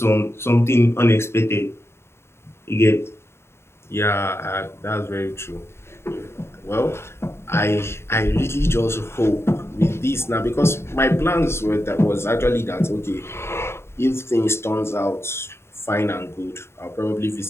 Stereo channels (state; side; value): late; right; 0.12 ms